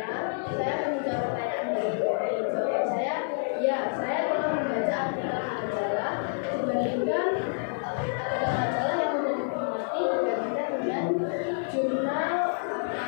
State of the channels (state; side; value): silent; right; digital silence